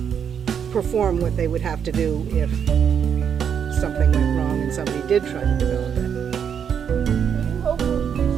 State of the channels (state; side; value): quieter; left; 7.8 dB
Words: perform what they would have to do if something went wrong and somebody did try to develop it. You hope will